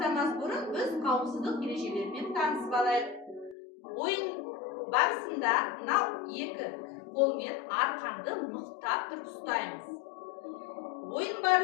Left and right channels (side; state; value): right; drops out; at 3.6 s